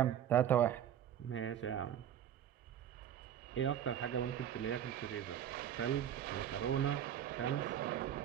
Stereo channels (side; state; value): left; quieter; 10.1 dB